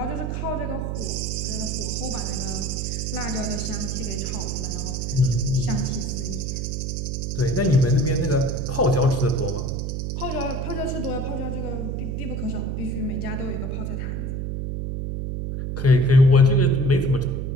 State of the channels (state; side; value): noise; right; hum, 3 dB below the sound